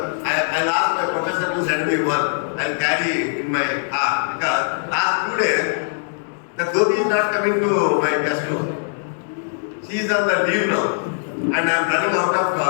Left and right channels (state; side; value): silent; right; digital silence